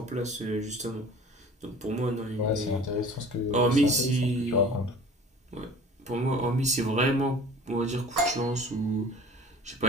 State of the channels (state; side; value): normal; both; correlation 0.45